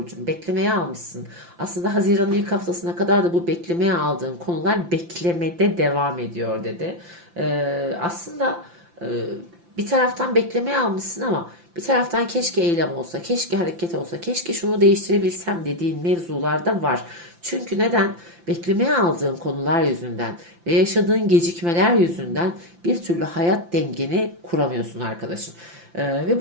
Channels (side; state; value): left; late; 5.8 ms